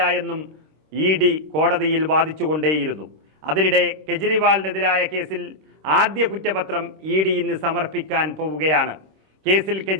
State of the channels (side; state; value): left; late; 26 ms